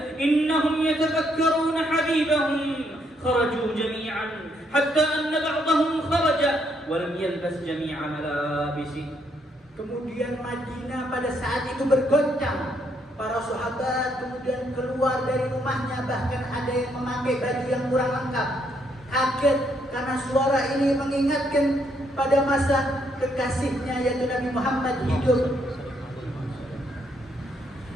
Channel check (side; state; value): both; normal; correlation 0.73